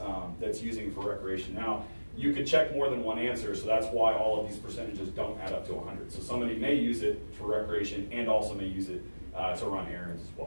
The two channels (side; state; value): both; inverted; correlation -1.00